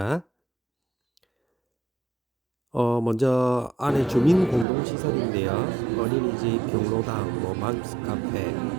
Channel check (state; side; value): drops out; left; at 4.7 s